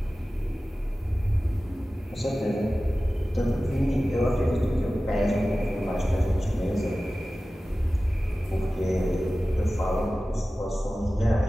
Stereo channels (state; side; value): normal; both; correlation 0.96